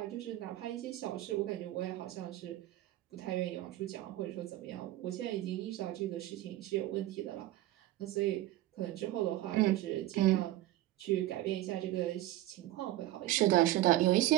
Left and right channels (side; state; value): left; quieter; 15.6 dB